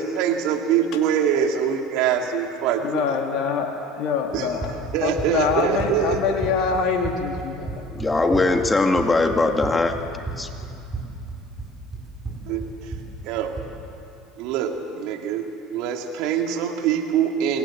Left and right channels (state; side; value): normal; both; correlation 0.42